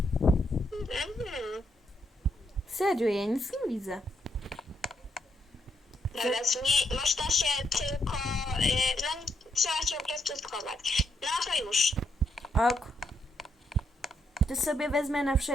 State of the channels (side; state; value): both; normal; correlation 0.77